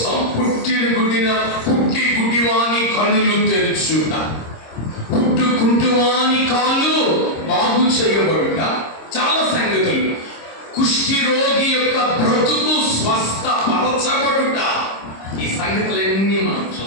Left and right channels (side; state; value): right; late; 26 ms